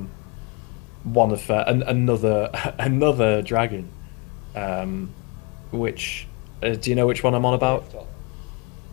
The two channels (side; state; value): right; quieter; 30.7 dB